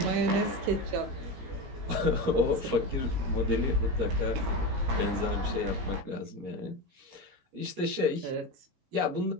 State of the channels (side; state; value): left; late; 17 ms